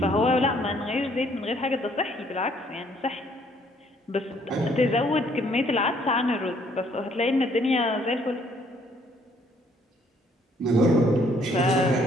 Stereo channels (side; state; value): both; normal; correlation 0.64